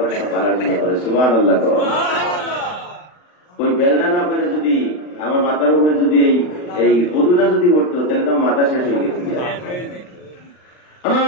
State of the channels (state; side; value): late; right; 39 ms